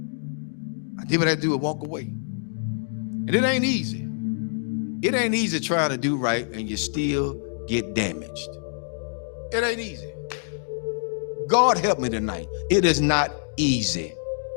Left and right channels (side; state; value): right; silent; digital silence